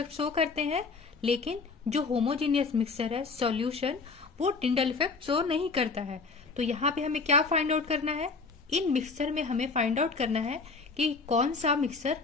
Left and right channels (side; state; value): right; quieter; 4.4 dB